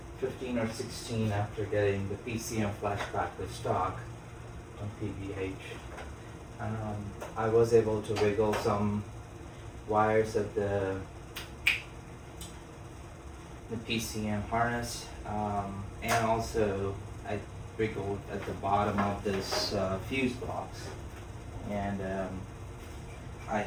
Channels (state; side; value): identical; both; correlation 1.00